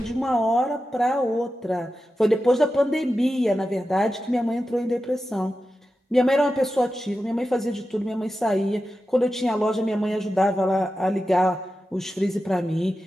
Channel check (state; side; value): normal; both; correlation 0.92